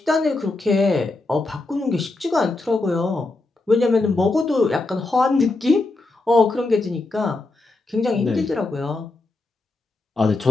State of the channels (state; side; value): quieter; right; 3.2 dB